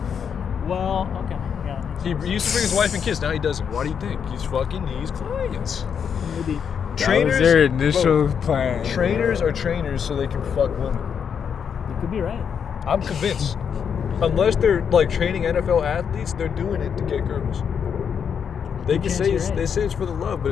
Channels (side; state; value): right; quieter; 7.3 dB